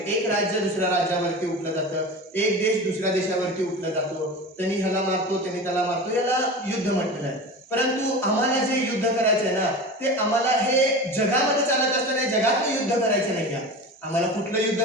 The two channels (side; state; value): both; normal; correlation 0.31